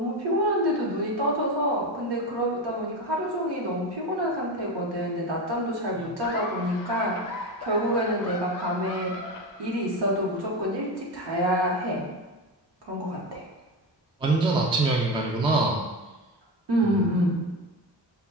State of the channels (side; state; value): both; normal; correlation 0.20